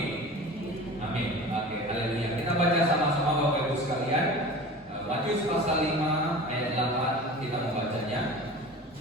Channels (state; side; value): normal; both; correlation 0.37